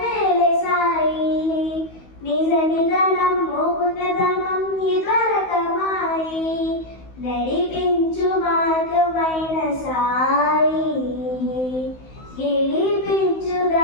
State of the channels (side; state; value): right; late; 16 ms